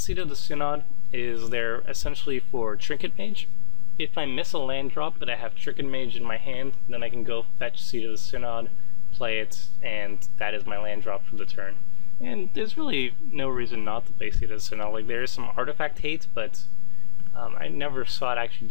of the Synod is there essentially for Trinket Mage. If I miss a land drop but I have Trinket Mage in my hand, then I can go fetch Seat of the Synod, play it, and that is my land drop for the turn. And there's really no reason not to play Seat of the Synod. Like, there is some artifact hate, but I never saw it actually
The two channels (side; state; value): right; silent; digital silence